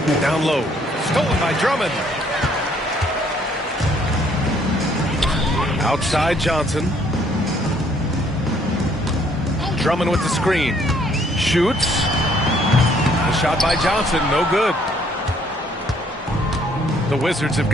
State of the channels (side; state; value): both; normal; correlation 0.64